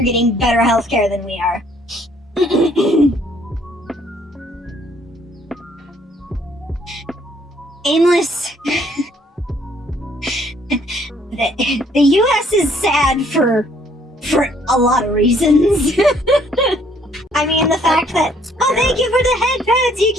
getting better healthcare than we are. Aimless. The U.S. is sad for a lot of reasons. I mean, the fact that, oh, thank you for the head pats,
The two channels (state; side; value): normal; both; correlation 0.64